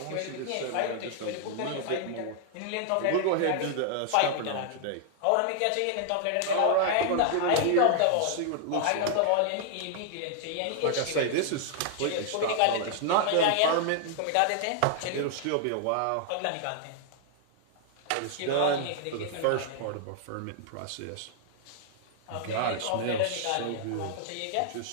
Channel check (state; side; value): different; both; correlation -0.01